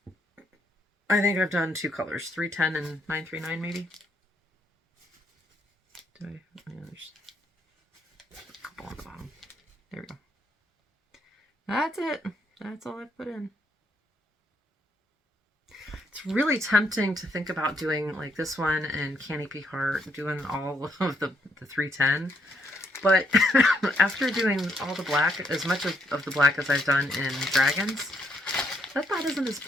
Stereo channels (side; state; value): both; normal; correlation 0.73